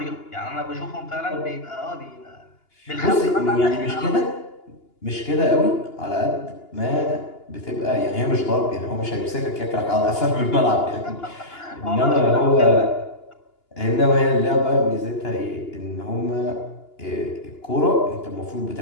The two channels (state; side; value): late; right; 2.9 ms